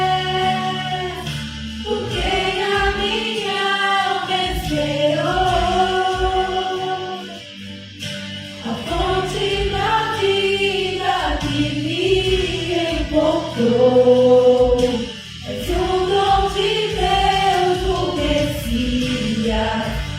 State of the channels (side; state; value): both; identical; correlation 1.00